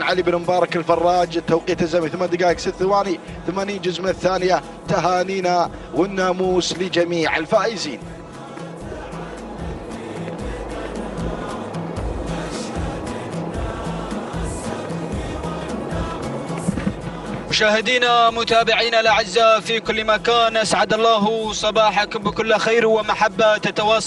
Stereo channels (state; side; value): identical; both; correlation 1.00